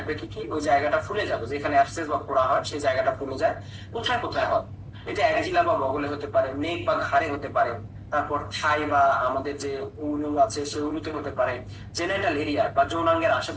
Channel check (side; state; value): both; identical; correlation 1.00